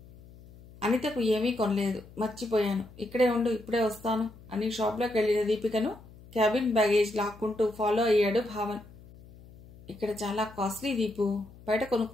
అనితకు ఏమీ కొనలేదు, మర్చిపోయాను, ఇక్కడే ఉండు, ఇప్పుడే వస్తాను అని షాప్లోకి వెళ్ళిన దీపికను క్యాబిన్ బ్యాగేజ్ లాక్కుంటూ ఫాలో అయ్యాడు భావన్. ఇక్కడ చాలా కాస్ట్లీ దీపు, బయట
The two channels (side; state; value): left; noise; hum, 21 dB below the sound